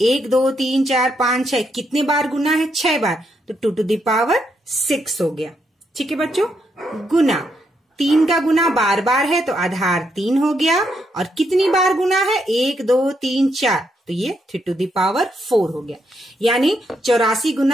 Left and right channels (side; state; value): both; normal; correlation 0.78